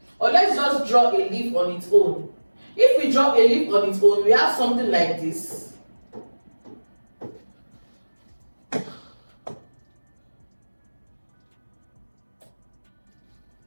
or let's just draw a leaf on its own. If we draw a leaf on its own, we have something like this.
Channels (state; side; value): inverted; both; correlation -1.00